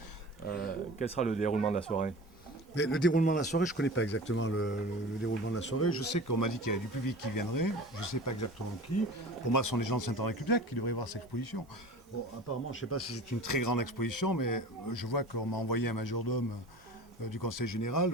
Quel sera le déroulement de la soirée? Mais le déroulement de la soirée, je ne connais pas exactement le déroulement de la soirée. Je sais qu'on m'a dit qu'il y avait du public qui viendrait. Je ne sais pas exactement qui. Pour moi, ce sont les gens de Saint-Henri-Cubliac qui devraient voir cette exposition. Bon, apparemment, je ne sais pas si c'est une très grande exposition, mais je vois qu'on m'a envoyé un majordome du Conseil général.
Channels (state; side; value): normal; both; correlation 0.38